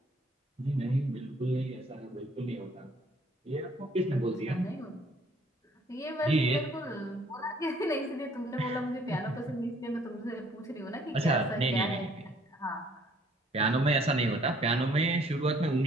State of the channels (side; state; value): both; normal; correlation 0.61